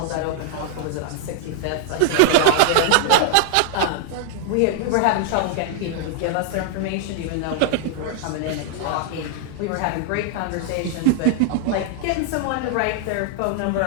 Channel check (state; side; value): different; both; correlation 0.00